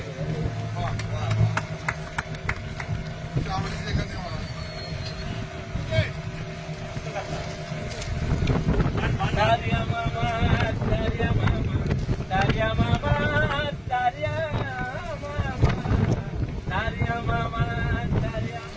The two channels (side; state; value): both; identical; correlation 1.00